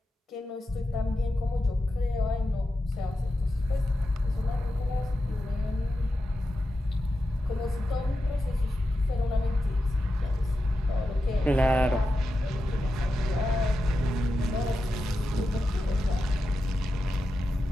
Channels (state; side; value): normal; both; correlation 0.90